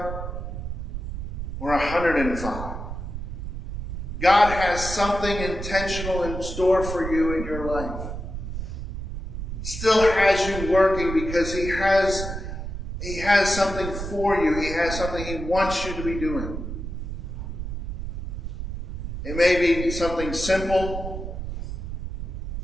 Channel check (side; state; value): right; noise; rumble, 6 dB below the sound